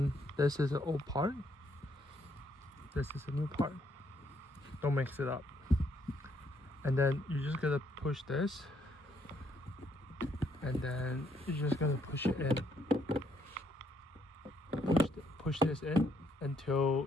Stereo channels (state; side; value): normal; both; correlation 0.71